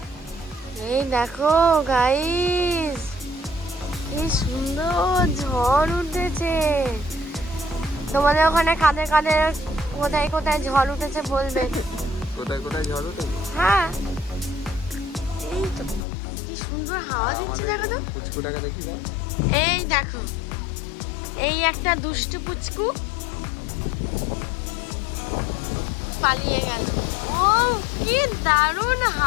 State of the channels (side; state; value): right; drops out; at 16.1 s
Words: এই দেখো গাইস, কি সুন্দর ঝড় উঠেছে। তোমাদের ওখানে কাদের কাদের কোথায় কোথায় ঝড় উঠেছে বলবে। কোথায় কোথায় ঝড় উঠেছে? হ্যাঁ এই তো কি সুন্দর হাওয়া দিচ্ছে, দেখো তো। পুচকুটাকে দেখি দাও। এই দেখো, এই একটা দুষ্টু পুচকু পালিয়ে গেল। ও কি দারুণ